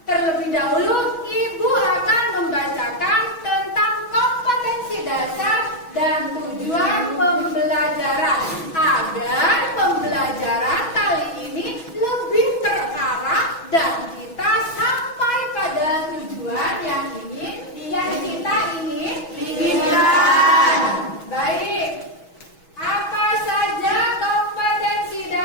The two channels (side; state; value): right; late; 6.2 ms